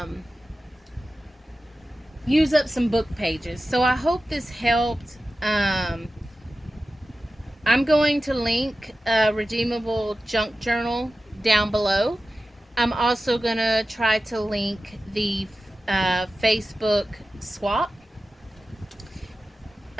use up some book pages. So I hope this helped. I'm going to link a redeemable junk journal down below. I'm also going to try to link the Facebook swap.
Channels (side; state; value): both; normal; correlation 0.94